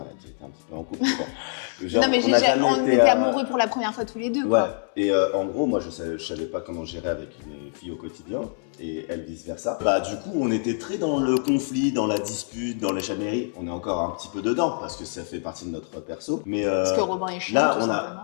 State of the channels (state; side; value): silent; right; 62 dB below the other